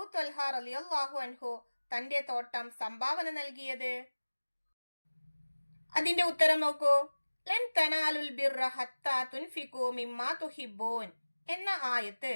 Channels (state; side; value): inverted; both; correlation -1.00